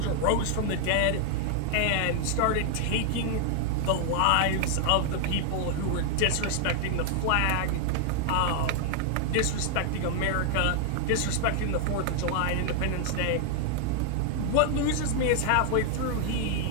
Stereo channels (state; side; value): different; both; correlation 0.00